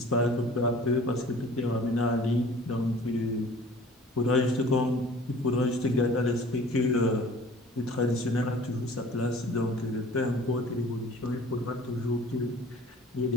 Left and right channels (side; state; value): both; normal; correlation 0.47